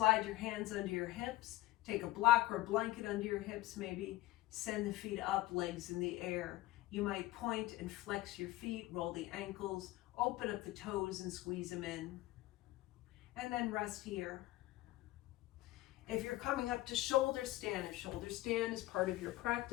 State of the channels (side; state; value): right; quieter; 17.6 dB